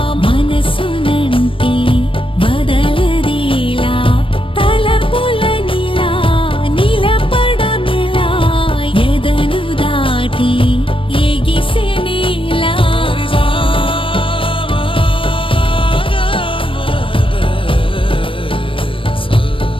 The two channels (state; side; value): late; right; 0.25 ms